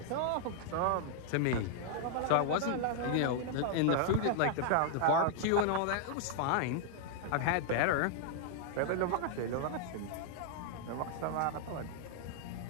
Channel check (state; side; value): different; both; correlation 0.00